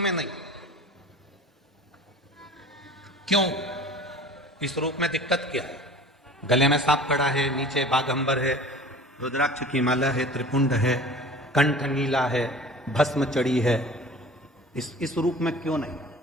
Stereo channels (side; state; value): both; normal; correlation 0.42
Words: नहीं। क्यों? इस रूप में दिक्कत क्या है? गले में सांप पड़ा है, नीचे बाघंबर है, रुद्राक्ष की माला है, त्रिपुंड है, कंठ नीला है, भस्म चढ़ी है। इस रूप में क्यों नहीं?